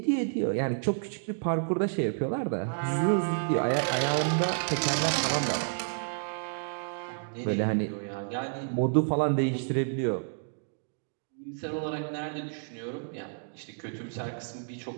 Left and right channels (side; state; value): left; silent; digital silence